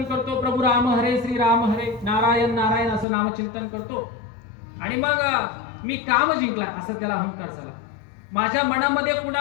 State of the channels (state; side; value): drops out; right; at 3.1 s